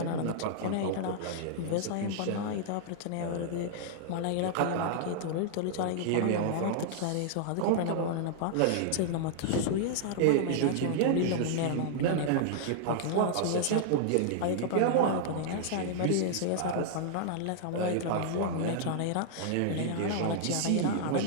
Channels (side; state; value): both; different; correlation -0.01